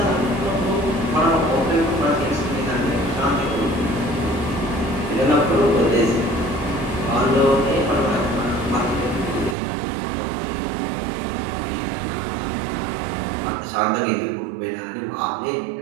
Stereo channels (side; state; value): left; drops out; at 9.6 s